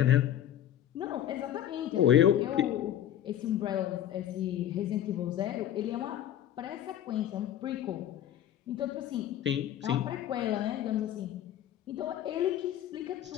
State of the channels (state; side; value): quieter; right; 11.3 dB